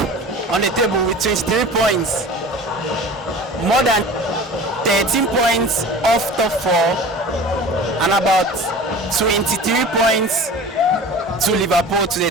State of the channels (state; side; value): normal; both; correlation 0.39